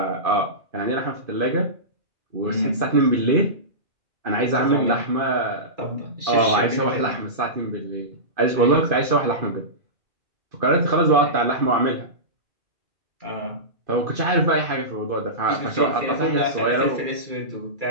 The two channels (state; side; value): late; left; 2.4 ms